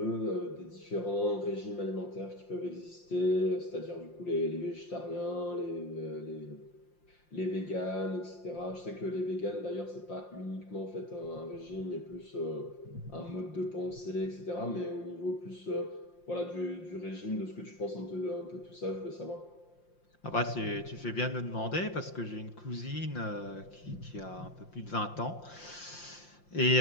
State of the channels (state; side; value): late; right; 5.7 ms